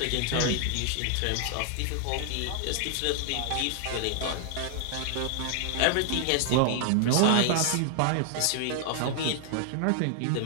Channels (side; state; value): both; different; correlation 0.00